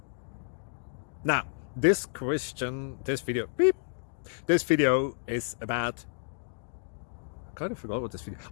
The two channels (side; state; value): right; silent; digital silence